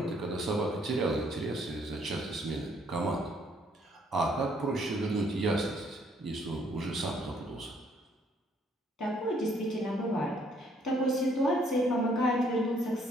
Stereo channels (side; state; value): both; normal; correlation 0.66